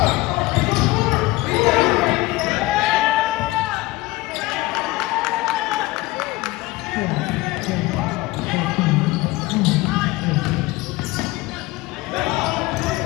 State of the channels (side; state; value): right; quieter; 19.9 dB